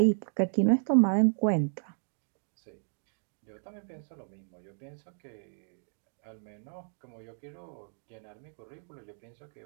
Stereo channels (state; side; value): silent; left; digital silence